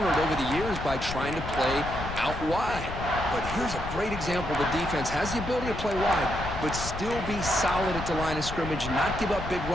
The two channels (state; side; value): noise; left; rumble, 8 dB below the sound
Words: over the years by trying to play out wide. But here's a great example. The defense has the ability to play wide, but still be solid at the line of scrimmage, not give up big